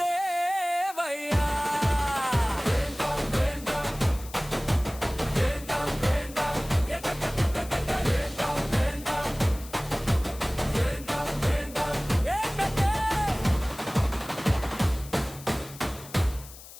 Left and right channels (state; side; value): noise; left; hiss, 17 dB below the sound